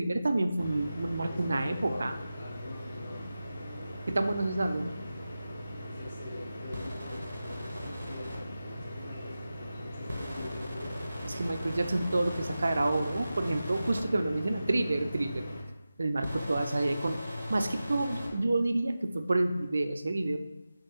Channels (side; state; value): both; inverted; correlation -0.94